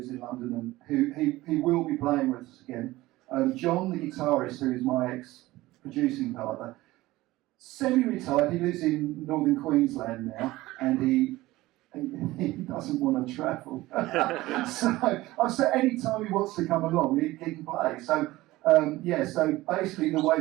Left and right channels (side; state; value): left; quieter; 18.2 dB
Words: in London, and he will be playing with us again. John, the guitarist, who is my ex-producing partner, semi-retired. He lives in northern Queensland now, and he doesn't want to travel. So I said any time he wants to come along, he can play. So so basically the way